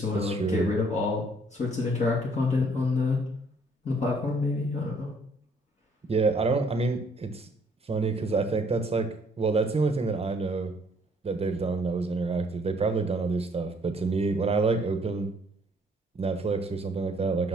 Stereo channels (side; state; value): both; normal; correlation 0.63